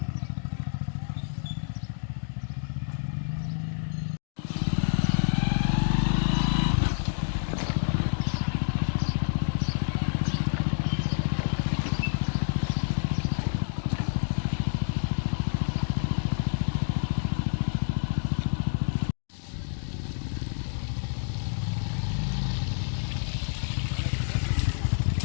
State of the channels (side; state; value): right; silent; digital silence